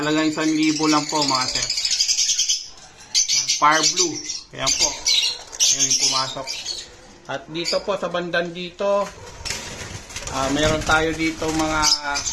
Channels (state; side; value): identical; both; correlation 1.00